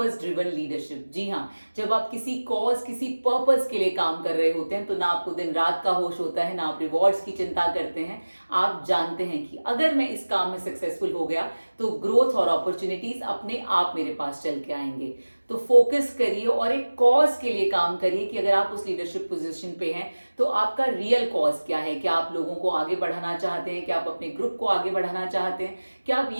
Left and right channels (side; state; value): both; inverted; correlation -1.00